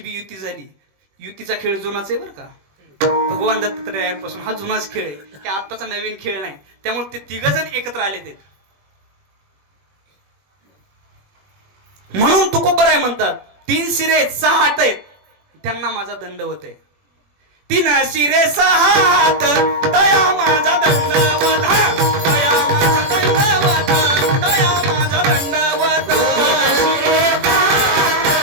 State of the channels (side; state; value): left; late; 21 ms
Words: बी युती झाली. युतीचा खेळ जुनाच आहे बरं का. भगवान दत्तात्रयांपासून हा जुनाच खेळ आहे, हे आत्ताचा नवीन खेळ नाही. त्यामुळे ते तिघ जण एकत्र आले ते. म्हणून तुकोबराय म्हणतात, 3 शिरे 6 हात आहेत, त्यांना माझा दंडवत आहे. 3 शिरे 6 हात, दया माझा दंडवत, दया माझा दंडवत, दया माझा दंडवत.